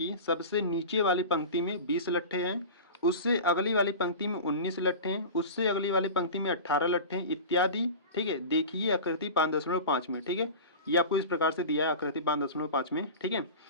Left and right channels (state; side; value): inverted; both; correlation -0.32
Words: सबसे नीचे वाली पंक्ति में 20 लट्ठे हैं, उससे अगली वाली पंक्ति में 19 लट्ठे हैं, उससे अगली वाली पंक्ति में 18 लट्ठे हैं इत्यादि, ठीक है। देखिए आकृति 5.5 में, ठीक है, ये आपको इस प्रकार से दिया है आकृति 5.5 में, ठीक है।